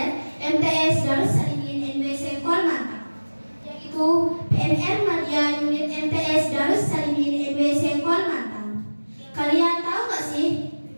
MTS Darus Salimin NWC Kolmantang, yaitu PMR Madya Unit MTS Darus Salimin NWC Kolmantang. Kalian tahu gak sih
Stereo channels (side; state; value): both; inverted; correlation -1.00